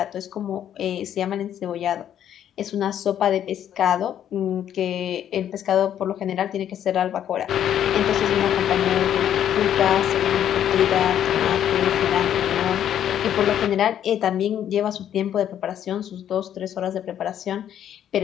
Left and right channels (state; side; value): quieter; right; 10.2 dB